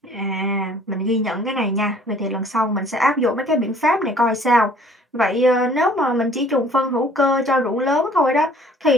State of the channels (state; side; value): normal; both; correlation 0.55